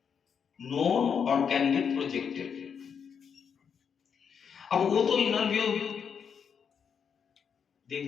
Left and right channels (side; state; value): right; quieter; 7.0 dB